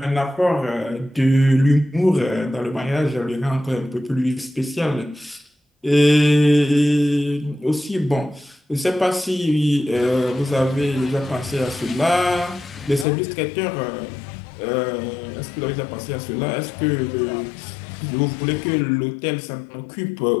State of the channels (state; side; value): drops out; right; at 13.1 s